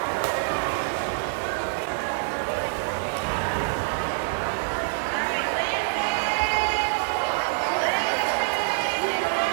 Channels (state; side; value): silent; left; digital silence